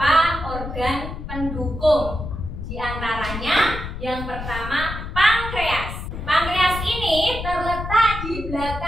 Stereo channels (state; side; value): noise; left; rumble, 8 dB below the sound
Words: organ pendukung. Di antaranya yang pertama pankreas. Pankreas ini terletak di